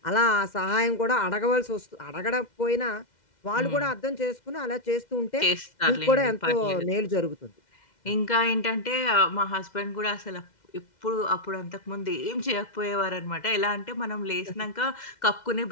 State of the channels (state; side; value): late; right; 2.1 ms